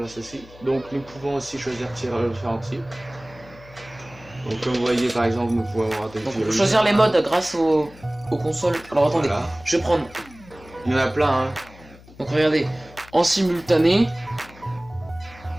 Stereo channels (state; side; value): noise; left; hum, 22 dB below the sound